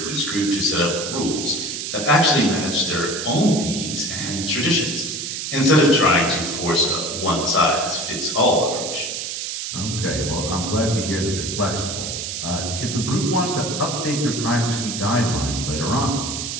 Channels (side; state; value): right; noise; hiss, 5 dB below the sound